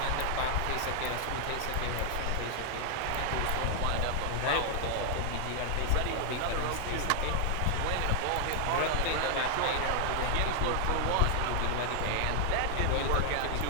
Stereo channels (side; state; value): both; different; correlation 0.00